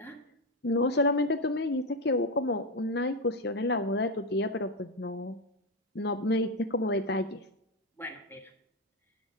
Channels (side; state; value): both; normal; correlation 0.09